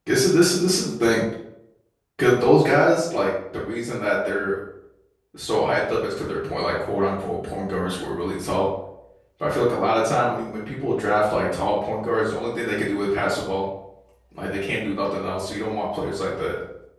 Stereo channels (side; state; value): both; identical; correlation 1.00